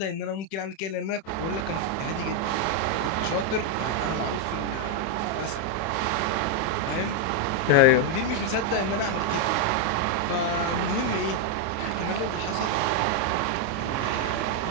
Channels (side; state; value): right; late; 31 ms